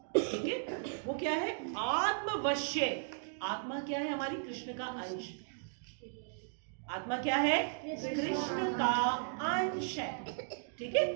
ठीक है। वो क्या है? आत्मवश्य। आत्मा क्या है? हमारी कृष्ण का अंश। आत्मा क्या है? कृष्ण का अंश है, ठीक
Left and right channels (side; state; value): left; silent; digital silence